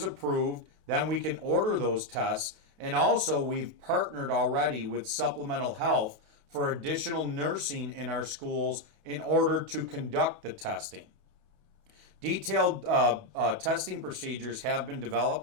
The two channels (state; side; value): late; left; 28 ms